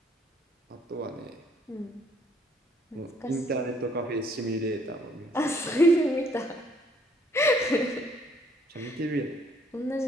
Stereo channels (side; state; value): both; normal; correlation 0.64